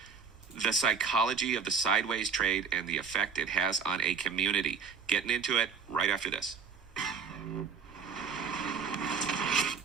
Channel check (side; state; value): left; quieter; 6.0 dB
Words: The psychology of the sideways trade and the effect it has on a community. Getting into it right after this.